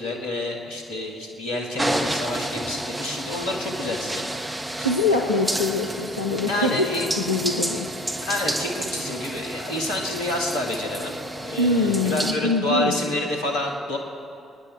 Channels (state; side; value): normal; both; correlation 0.38